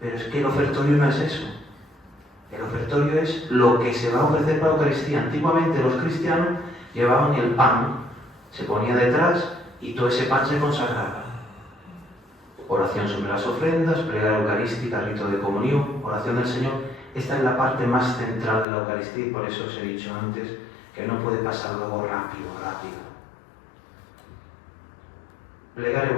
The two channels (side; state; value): right; drops out; at 18.7 s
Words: es que el ofertorio no es eso. El ofertorio es lo que se va a ofrecer para la Eucaristía. Antiguamente los cristianos llevaban el pan, se ponía detrás y todo ese pan se consagraba. Oración sobre las ofrendas, plegaria eucarística, rito de comunión, oración del Señor. Esta es la parte más central de la Eucaristía y por eso os he dicho antes que no puede pasar luego rápido. Plegaria